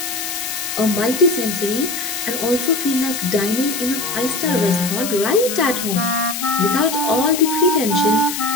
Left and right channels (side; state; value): left; noise; hiss, 5 dB below the sound